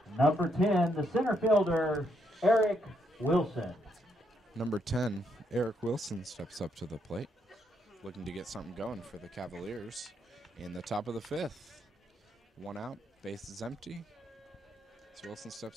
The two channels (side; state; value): both; normal; correlation 0.76